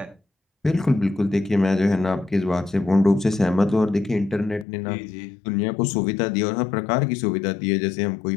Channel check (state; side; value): drops out; right; at 4.7 s